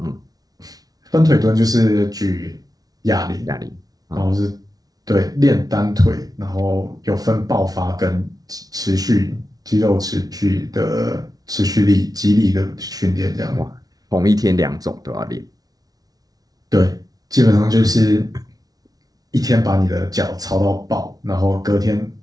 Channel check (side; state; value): left; late; 0.18 ms